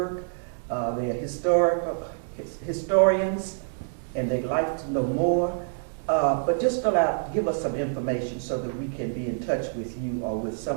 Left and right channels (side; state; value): left; silent; digital silence